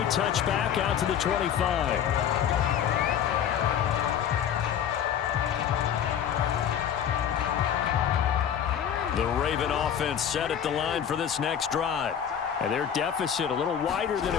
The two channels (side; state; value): right; quieter; 9.0 dB